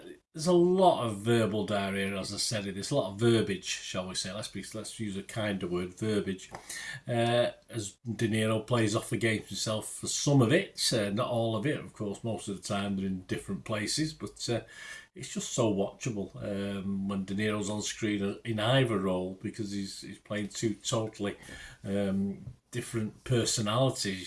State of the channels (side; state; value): both; identical; correlation 1.00